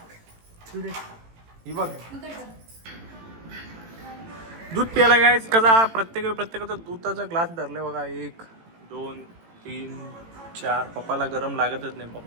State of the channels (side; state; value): left; late; 18 ms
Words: ही बघ दूध प्यायला गायच कसा प्रत्येकाचा दुधाचा ग्लास धरले बघा. 1 2 3 4. पप्पाला गरम लागतच नाही,